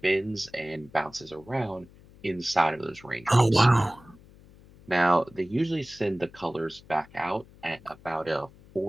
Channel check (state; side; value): noise; left; hum, 24 dB below the sound